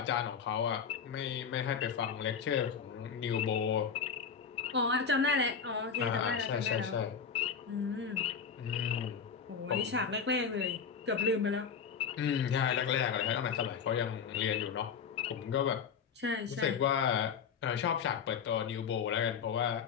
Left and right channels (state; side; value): quieter; right; 6.5 dB